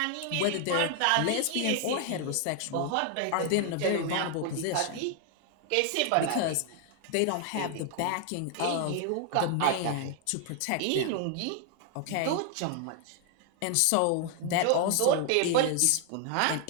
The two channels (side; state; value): both; different; correlation 0.00